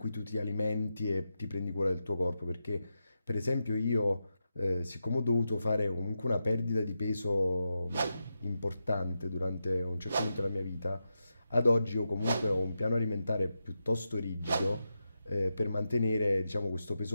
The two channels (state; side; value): inverted; both; correlation -0.88